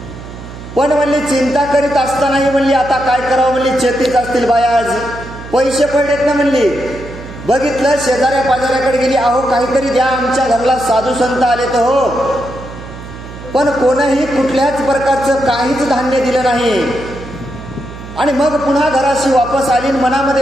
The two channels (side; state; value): right; noise; hum, 13 dB below the sound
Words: पण म्हणली चिंता करीत असतानाही म्हणली आता काय करावं म्हणली, चेतीच असतील बाया, आज पैसे पडलेत ना म्हणली. बघितलं, शेजाऱ्या पाजाऱ्याकडे गेली, अहो काहीतरी द्या, आमच्या घराला साधू संत आले तर हो. पण कोणीही कुठल्याच प्रकारचं काहीच धान्य दिलं नाही. आणि मग पुन्हा घराशी वापस आली,